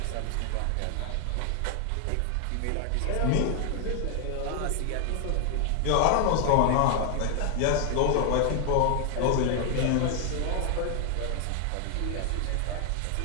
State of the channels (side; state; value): both; different; correlation 0.00